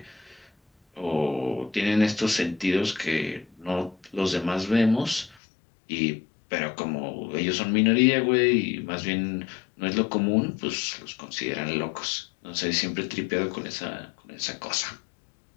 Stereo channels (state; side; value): drops out; right; at 5.4 s